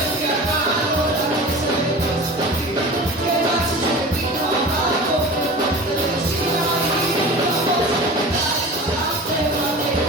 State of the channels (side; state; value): both; normal; correlation 0.36